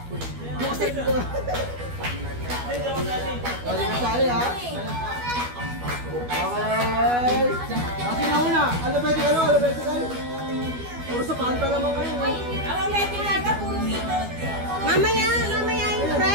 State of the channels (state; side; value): late; left; 12 ms